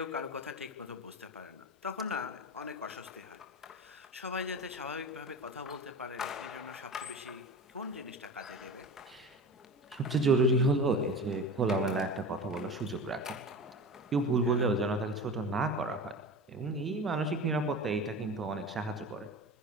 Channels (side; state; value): both; normal; correlation 0.31